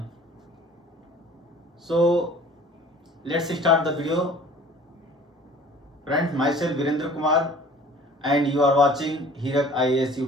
So let's start the video. Friends, myself Virendra Kumar and you are watching Hirak IAS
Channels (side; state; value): both; normal; correlation 0.48